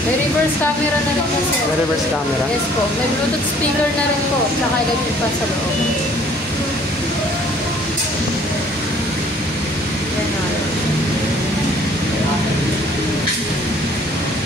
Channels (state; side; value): normal; both; correlation 0.57